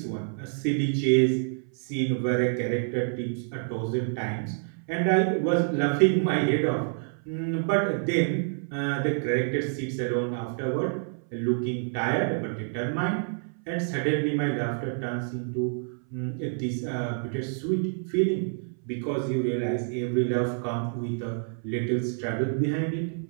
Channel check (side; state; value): left; silent; 60 dB below the other